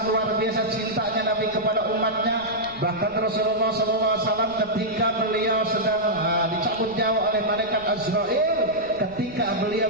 luar biasa cintanya Nabi kepada umatnya. Bahkan Rasulullah SAW ketika beliau sedang dicabut nyawa oleh malaikat Azrail, ketika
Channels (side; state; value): right; noise; rumble, 21 dB below the sound